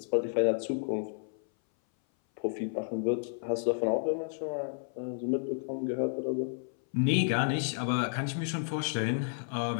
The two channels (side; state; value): right; silent; 57 dB below the other